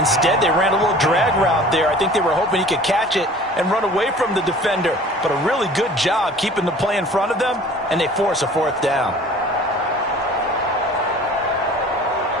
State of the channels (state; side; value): normal; both; correlation 0.46